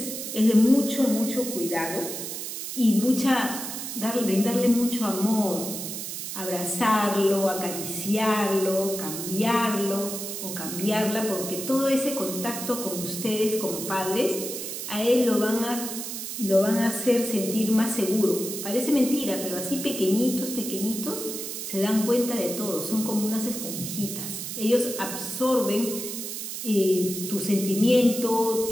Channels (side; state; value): right; noise; hiss, 6 dB below the sound